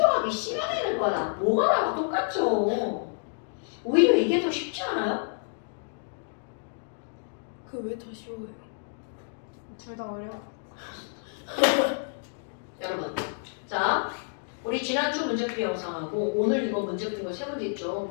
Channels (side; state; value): right; silent; digital silence